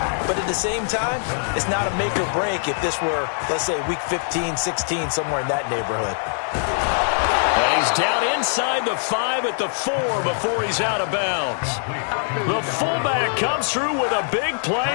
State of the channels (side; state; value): right; silent; digital silence